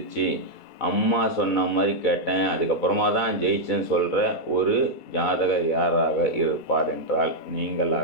அம்மா சொன்ன மாதிரி கேட்டேன், அதுக்கப்புறமா தான் ஜெயிச்சேன்னு சொல்கிற ஒரு ஜாதகர் யாராக இருப்பார் என்றால்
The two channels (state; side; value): late; right; 2.3 ms